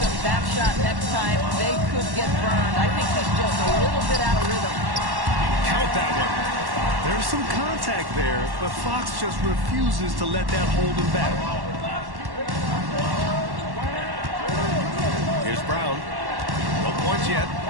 him that shot next time, they could get burned. I think he's just a little bit out of rhythm. Count that one. There's some contact there, but Fox just refuses to let that hold him back. Here's Brown. No points yet.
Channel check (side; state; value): left; late; 1.1 ms